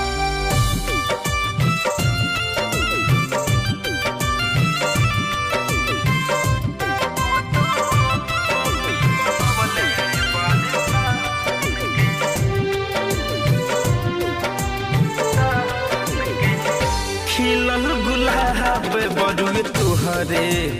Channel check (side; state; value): both; identical; correlation 1.00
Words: खिलल गुलाब बड़ुए तुहरे